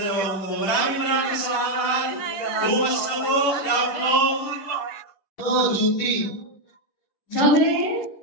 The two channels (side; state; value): right; late; 10 ms